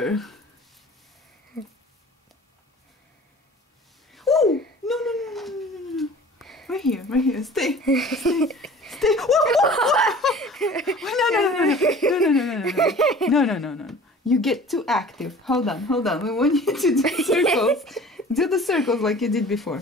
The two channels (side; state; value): both; normal; correlation 0.45